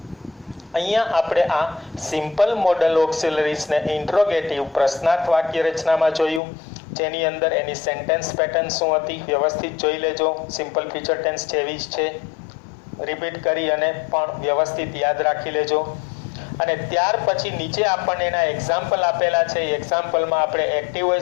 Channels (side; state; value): right; drops out; at 6.4 s